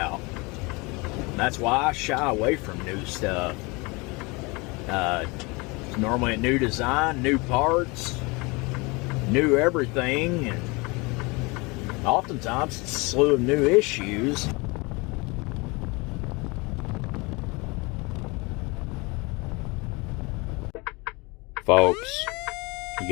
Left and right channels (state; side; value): quieter; right; 26.6 dB